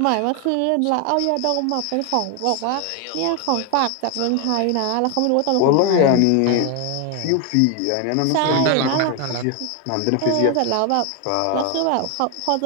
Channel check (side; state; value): both; different; correlation 0.01